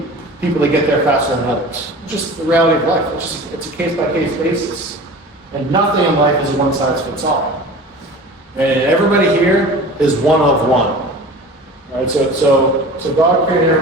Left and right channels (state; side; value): normal; both; correlation 0.38